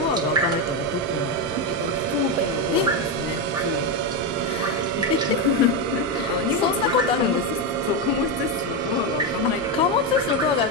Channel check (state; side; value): normal; both; correlation 0.09